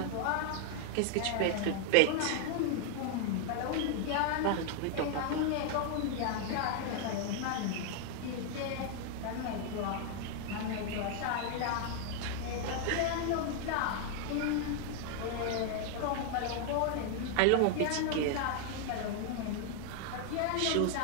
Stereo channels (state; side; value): different; both; correlation 0.00